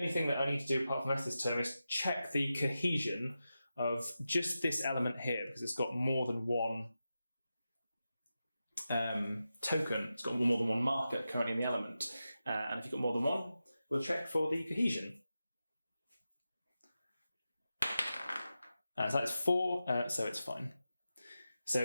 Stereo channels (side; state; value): both; inverted; correlation -0.91